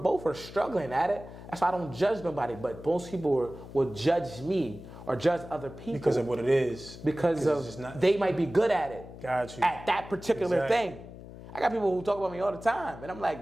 are struggling at it. That's why I don't judge nobody. But most people will judge me or judge other people because of what it is. Because they might be good at it. Got you. At that particular thing. I got people who talk about me all the time, and I'm like,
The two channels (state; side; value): noise; left; hum, 15 dB below the sound